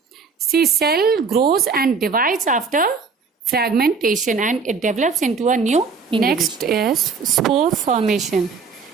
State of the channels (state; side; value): quieter; left; 5.1 dB